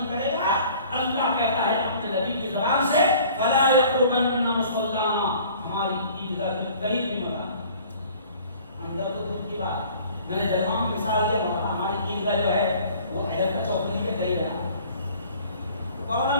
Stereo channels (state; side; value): inverted; both; correlation -0.50